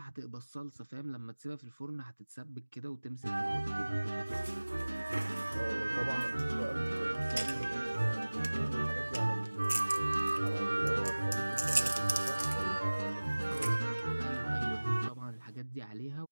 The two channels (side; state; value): both; inverted; correlation -1.00